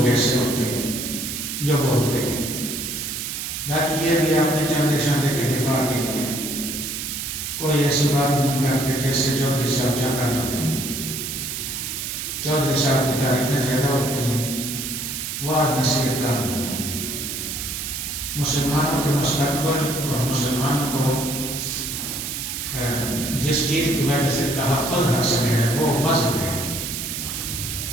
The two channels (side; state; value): right; noise; hiss, 5 dB below the sound